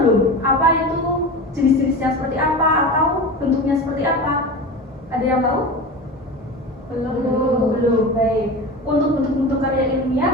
apa itu jenis-jenisnya seperti apa atau bentuknya seperti apa? Ada yang tahu? Belum. Baik. Untuk bentuk-bentuk karya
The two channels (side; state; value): both; normal; correlation 0.29